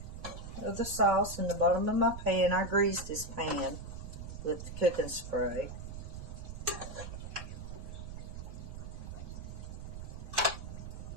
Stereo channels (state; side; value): noise; right; rumble, 9 dB below the sound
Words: of the sauce in the bottom of my pan. I greased this pan with the cooking spray.